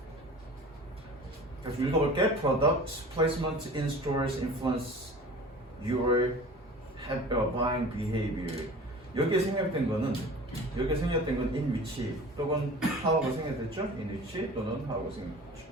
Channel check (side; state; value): both; normal; correlation 0.40